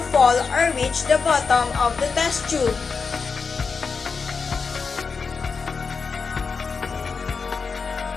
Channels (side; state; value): right; quieter; 5.1 dB